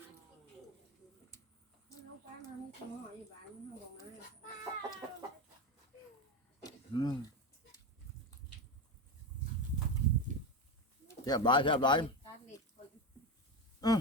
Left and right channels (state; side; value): normal; both; correlation 0.16